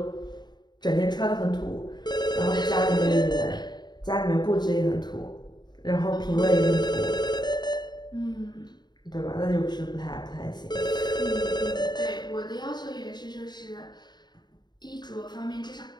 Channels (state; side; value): late; right; 0.21 ms